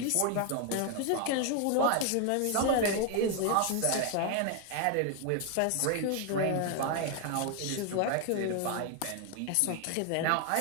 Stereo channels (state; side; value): different; both; correlation 0.01